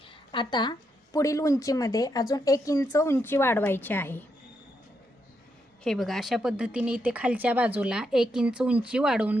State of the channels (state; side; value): normal; both; correlation 0.80